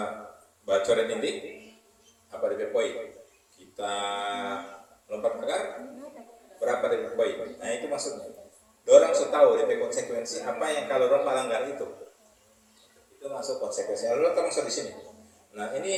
bacoret ini, apa DP poin? Kita lompat pagar, berapa DP poin? Nah itu maksudnya. Dorang sudah tahu DP konsekuensi apa yang kalau orang melanggar itu. Itu masuk konsekuensi. Lalu kita masuk di sini. Nah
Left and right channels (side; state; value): both; identical; correlation 1.00